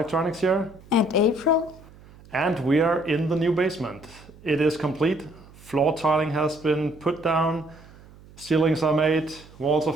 here. And April. And we are in the new basement. It is complete. Floor tiling has been put down, ceilings are made, walls are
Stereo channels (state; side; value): noise; right; hum, 23 dB below the sound